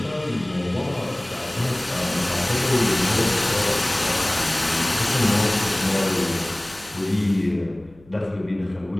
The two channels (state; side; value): noise; left; hum, 26 dB below the sound